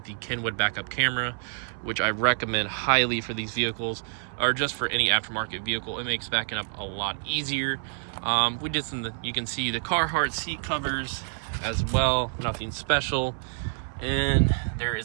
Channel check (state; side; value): silent; left; 60 dB below the other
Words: the Kenwood backup camera, which I recommend highly for these vehicles, or just for any aftermarket vehicle. It makes backing up a lot easier. We did you can see the Carhartt seat covers as well, nothing special. And there